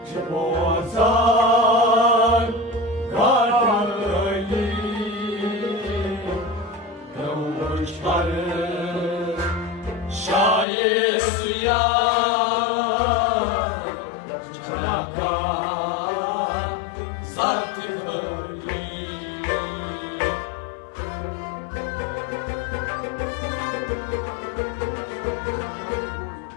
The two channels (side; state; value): right; drops out; at 10.7 s